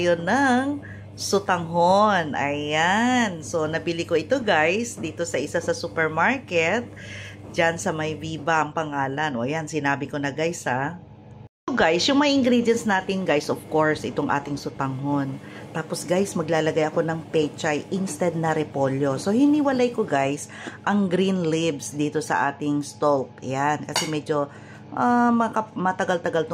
ng sutanghon. Ayan. So, nabili ko ito guys dito sa isa sa supermarket. Diyan sa may Viva ang pangalan. O ayan, sinabi ko na guys ha. So guys, yung mga ingredients natin guys, of course, itong ating sutanghon. Tapos guys, maglalagay ako ng pechay instead na repolyo. So, hiniwalay ko guys ang green leaves dito sa ating stalk. Yan, kasi medyo matagal-tagal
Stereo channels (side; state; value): both; identical; correlation 1.00